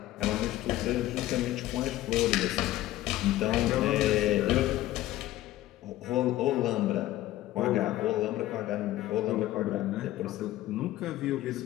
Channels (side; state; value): right; quieter; 15.3 dB